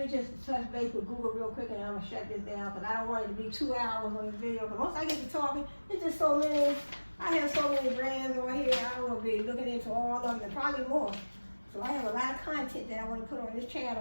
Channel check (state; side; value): inverted; both; correlation -1.00